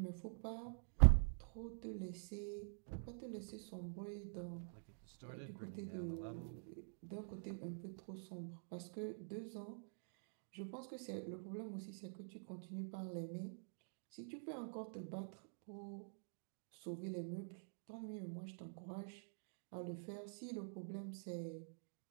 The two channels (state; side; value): silent; left; digital silence